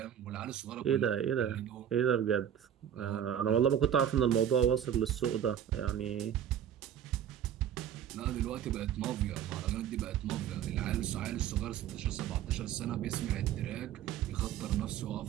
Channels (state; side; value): quieter; left; 9.7 dB